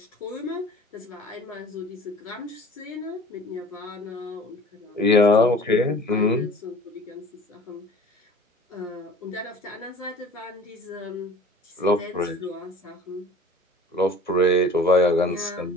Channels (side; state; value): both; normal; correlation 0.45